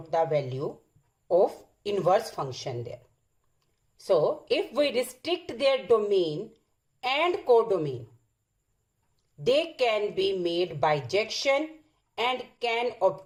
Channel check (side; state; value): both; identical; correlation 1.00